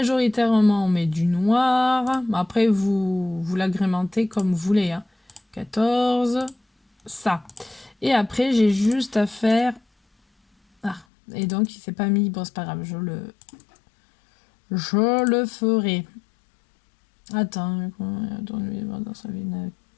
on met du noir. Après, vous l'agrémentez comme vous voulez. Hein. 14, ça. Et après, j'ai juste à faire... Ah, et donc, il s'est pas mis. Bon, c'est pas grave, je le ferai. Attends, dans sa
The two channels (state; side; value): drops out; right; at 11.1 s